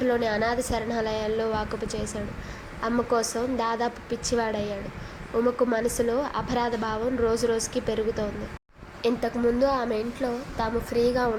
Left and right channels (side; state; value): both; identical; correlation 1.00